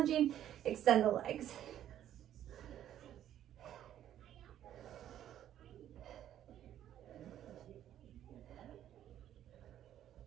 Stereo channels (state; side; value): quieter; left; 11.3 dB